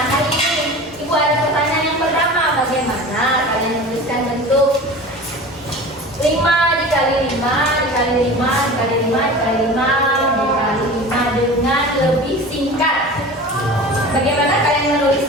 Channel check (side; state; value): both; normal; correlation 0.36